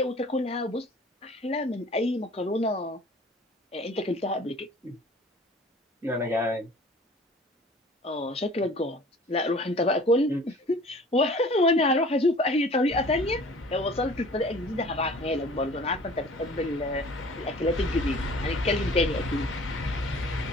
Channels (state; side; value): normal; both; correlation 0.47